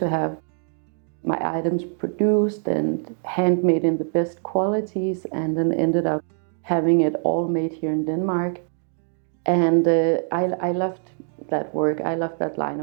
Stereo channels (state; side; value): silent; left; 55 dB below the other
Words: have my items produced and handmade in the best qualities, and then ended up having it all made here in Denmark. And I loved that work. I loved that line